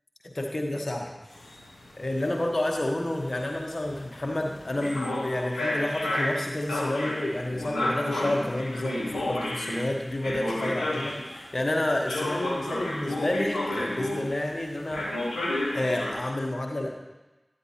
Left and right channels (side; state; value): both; normal; correlation 0.97